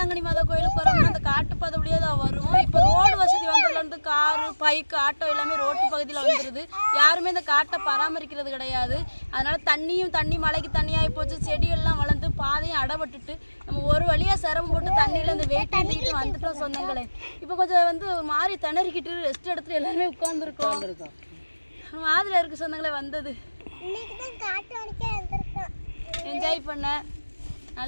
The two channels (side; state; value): both; inverted; correlation -1.00